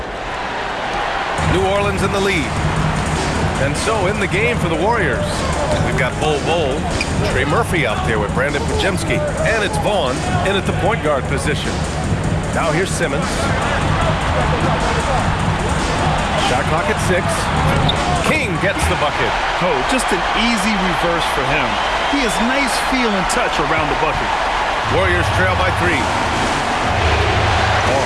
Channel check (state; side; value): identical; both; correlation 1.00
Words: New Orleans in the lead. And so in the game for the Warriors, we've got Bol, Trey Murphy out there with Brandon Pajemski, and it's Vaughn in at the point guard position. Now here's Simmons. Shot clock at 6. King gets the bucket. Oh, just an easy reverse for him. He has nice feel and touch around the bucket. Warriors trail by 3.